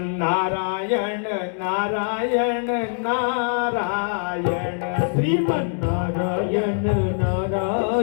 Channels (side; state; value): right; silent; 63 dB below the other